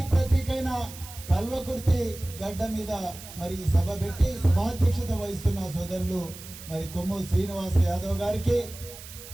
ప్రతీకైన కల్వకుర్తి గడ్డ మీద మరి సభ పెట్టి సభాధ్యక్షత వహిస్తున్న సోదరులు మరి కొమ్ము శ్రీనివాస యాదవ్ గారికి,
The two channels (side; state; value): right; noise; hiss, 15 dB below the sound